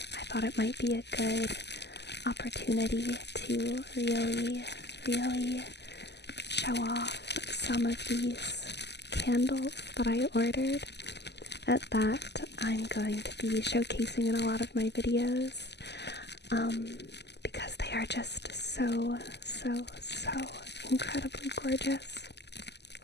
thought it might be a good opportunity to really show off some of these candles that I ordered. At that, I'm going to be showcasing in a lot of my videos, because they are just so incredibly gorgeous.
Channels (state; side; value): late; right; 0.50 ms